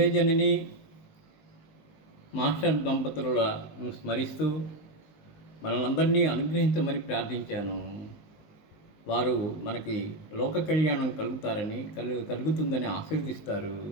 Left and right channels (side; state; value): right; late; 19 ms